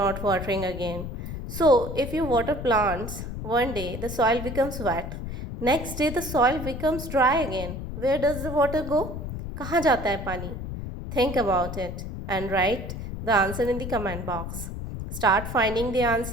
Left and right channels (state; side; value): noise; left; rumble, 7 dB below the sound